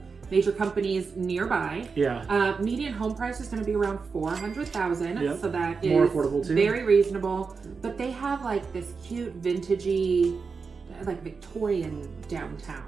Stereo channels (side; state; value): left; quieter; 5.0 dB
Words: major companies nearby. Yeah. Median home price is going to be around $400,000. Yep. So that is More affordable too. very reasonable. But they have like this cute vintagey, like Victorian downtown.